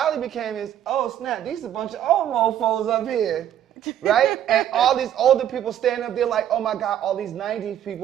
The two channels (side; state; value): left; quieter; 10.8 dB